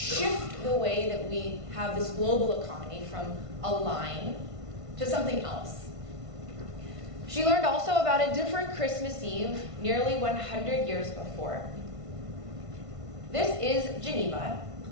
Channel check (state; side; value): late; left; 1.5 ms